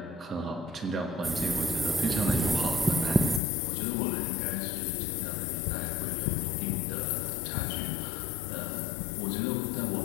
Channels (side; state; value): right; drops out; at 3.4 s